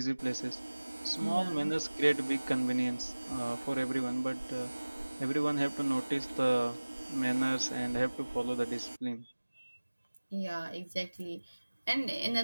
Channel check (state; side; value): inverted; both; correlation -1.00